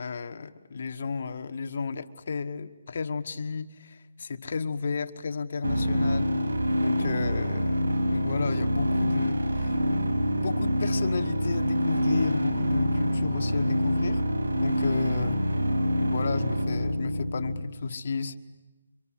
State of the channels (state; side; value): inverted; both; correlation -0.91